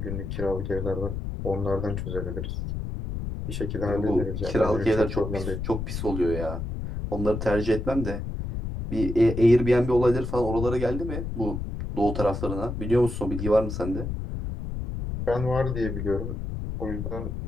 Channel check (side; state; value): left; noise; rumble, 5 dB below the sound